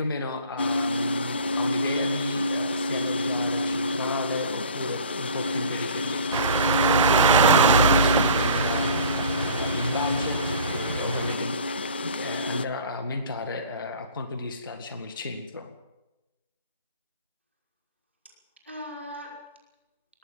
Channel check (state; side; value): inverted; both; correlation -0.44